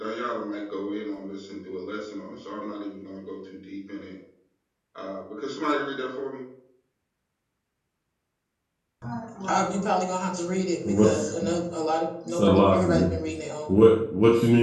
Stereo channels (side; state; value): both; identical; correlation 1.00